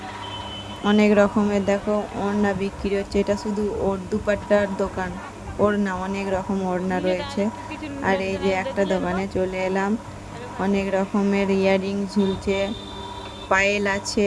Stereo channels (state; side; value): identical; both; correlation 1.00